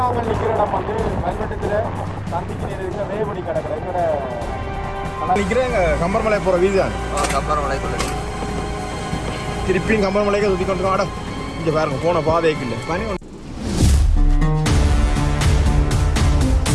நாங்கள் நிற்கிற இடம் வந்து கல்வெட்டத்தில் தந்திக்கு இருக்கிற வேபடி கிடக்கிற எங்களோட நிற்கிறேன் கம்பர்மலை போகிற வீதி தான். கம்பர்மலைக்குள்ள திருப்பியும் கம்பர்மலைக்கு சுற்றி கொண்டு ஆடம் இங்கே பாருங்க போன பாதைக்கு இல்லை பனி.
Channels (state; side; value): identical; both; correlation 1.00